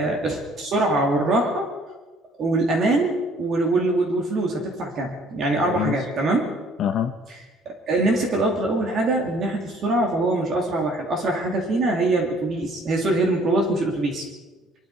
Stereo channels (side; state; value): both; normal; correlation 0.58